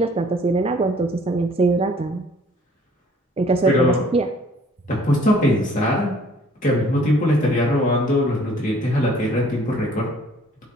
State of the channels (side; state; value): both; normal; correlation 0.57